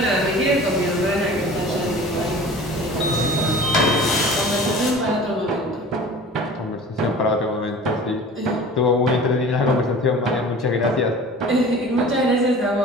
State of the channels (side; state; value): both; normal; correlation 0.41